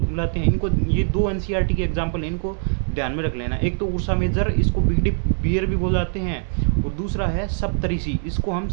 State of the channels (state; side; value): silent; left; 55 dB below the other